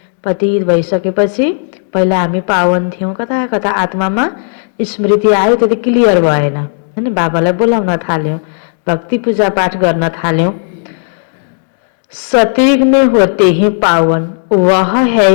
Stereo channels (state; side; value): silent; right; 62 dB below the other